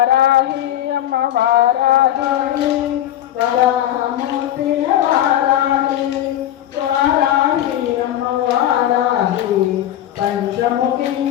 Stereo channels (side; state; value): right; quieter; 12.1 dB